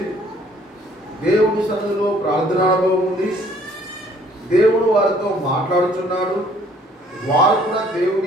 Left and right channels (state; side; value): normal; both; correlation 0.60